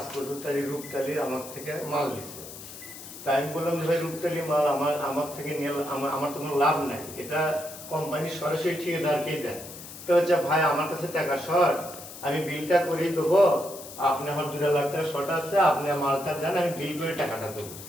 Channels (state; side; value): noise; left; hiss, 13 dB below the sound